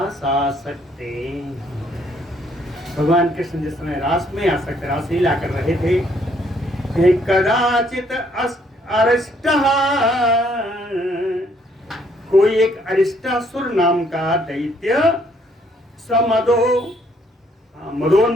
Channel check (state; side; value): normal; both; correlation 0.67